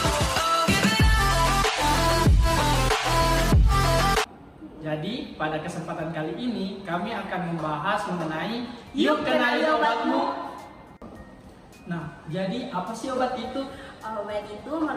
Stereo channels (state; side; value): identical; both; correlation 1.00